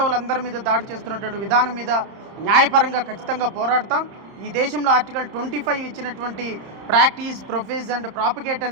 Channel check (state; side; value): late; left; 31 ms